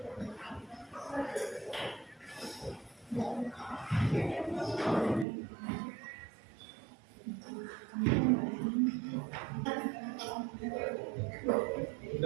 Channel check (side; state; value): left; drops out; at 5.2 s